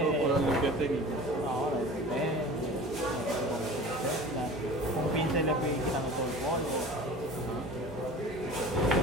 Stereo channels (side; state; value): both; normal; correlation 0.39